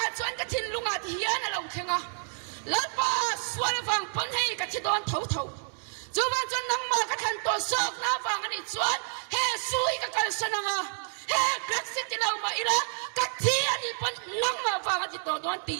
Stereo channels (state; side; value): silent; left; digital silence